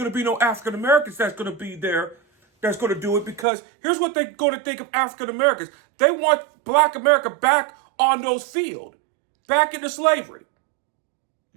to be no African Americans that's going to be there that's going to do it, because here's what they're going to think of African Americans. They want Black America back on those fields, back into slavery.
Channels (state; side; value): drops out; left; at 3.5 s